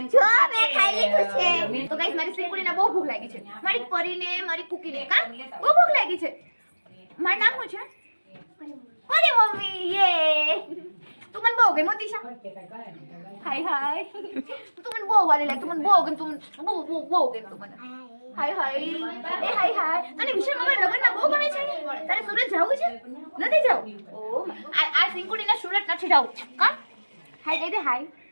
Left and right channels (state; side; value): inverted; both; correlation -1.00